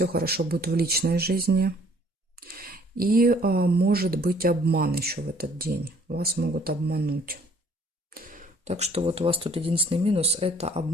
хорошо будет в личной жизни. И может быть обман еще в этот день. Вас могут обмануть. Так что вот у вас тут единственный минус – это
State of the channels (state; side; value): normal; both; correlation 0.59